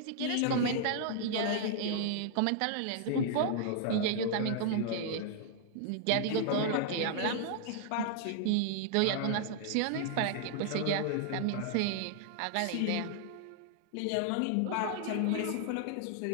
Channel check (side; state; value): both; different; correlation 0.00